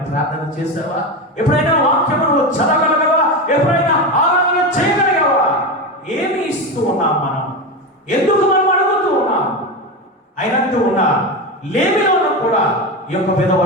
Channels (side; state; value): both; normal; correlation 0.18